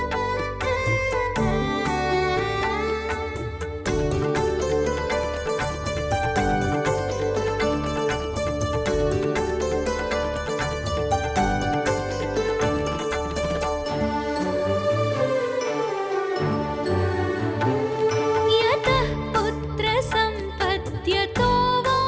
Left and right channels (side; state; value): both; identical; correlation 1.00